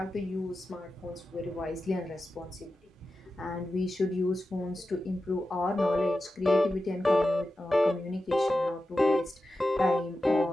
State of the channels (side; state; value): both; normal; correlation 0.92